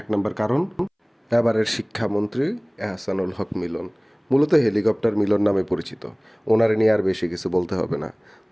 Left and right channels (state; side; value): identical; both; correlation 1.00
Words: নম্বর কারণ, এবারের শিক্ষামন্ত্রী এহসানুল হক মিলন, মূলত হেলিকপ্টার মিলন নামে পরিচিত। ওনারে নিয়ে আর বেশি কিছু বলতে হবে না।